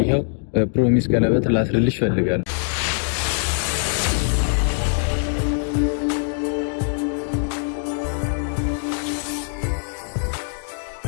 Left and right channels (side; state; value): right; silent; digital silence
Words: ይሄው ፕሮሚስ ቀለበት ላስርልሽ ፈልጋለሁ።